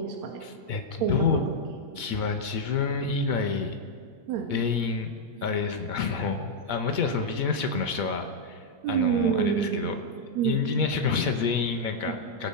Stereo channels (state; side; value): late; left; 8.7 ms